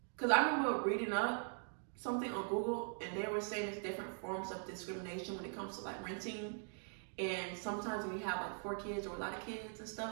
cause I remember reading up something on Google and they were saying there's different forms of discrimination when it comes to like renting. And sometimes when you have like 4 kids or a lot of kids and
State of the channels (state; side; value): silent; left; 50 dB below the other